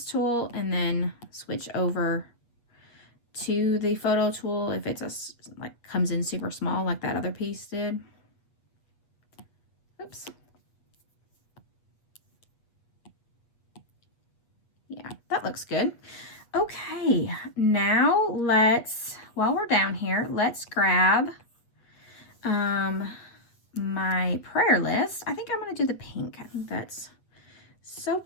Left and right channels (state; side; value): late; right; 8.3 ms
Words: tool and then switch over to the photo tool if it's like comes in super small like that other piece did. Oops. Yeah, that looks good. Okay, now while we're down here, let's grab my prayer list. I think I'm going to do the pink. I think that's so